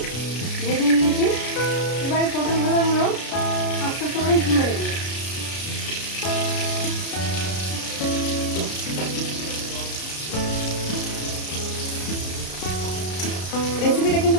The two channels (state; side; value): late; right; 33 ms